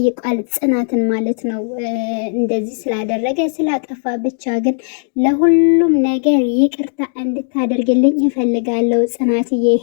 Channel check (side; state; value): right; silent; 59 dB below the other